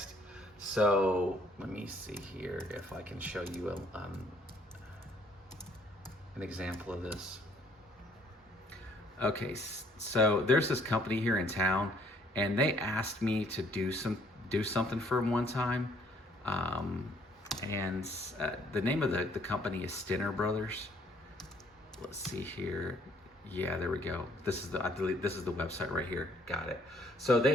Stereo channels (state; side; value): normal; both; correlation 0.63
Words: So let me see here if I can show you an example of this. Okay, so there's this company here in town, and they asked me to do something for them one time, and the name of the company is Stinner Brothers. Let's see here. Yeah, there we go. This is the website right here. Got it. So